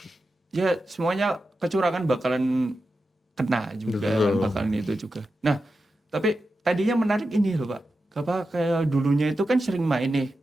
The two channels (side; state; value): both; normal; correlation 0.90